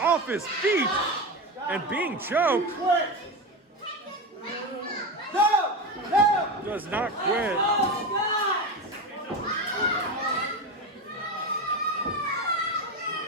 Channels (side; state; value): both; normal; correlation 0.20